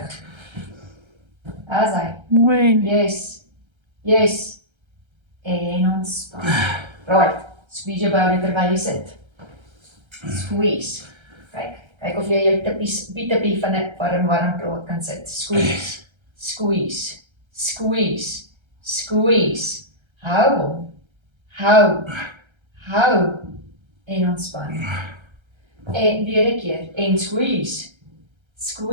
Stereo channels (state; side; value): late; left; 1.3 ms